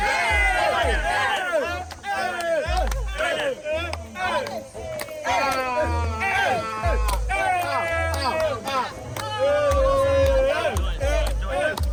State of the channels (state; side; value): identical; both; correlation 1.00